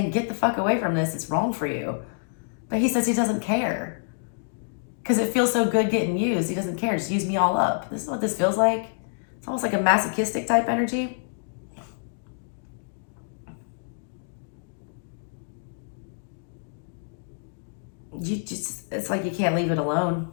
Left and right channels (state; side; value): silent; right; digital silence